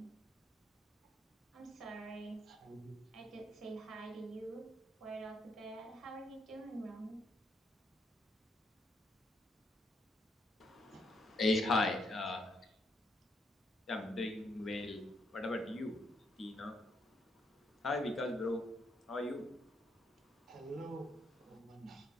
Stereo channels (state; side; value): normal; both; correlation 0.75